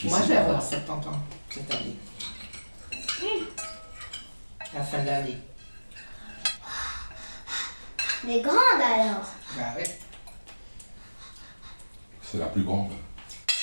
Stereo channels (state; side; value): inverted; both; correlation -1.00